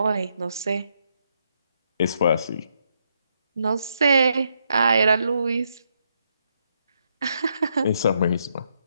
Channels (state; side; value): inverted; both; correlation -0.78